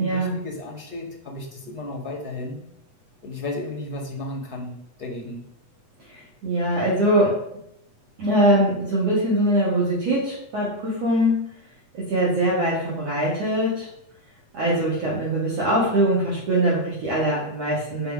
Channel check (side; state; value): left; late; 8.1 ms